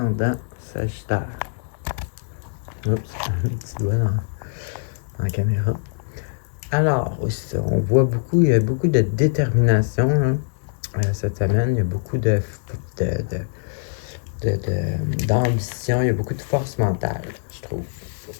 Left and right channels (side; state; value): right; silent; digital silence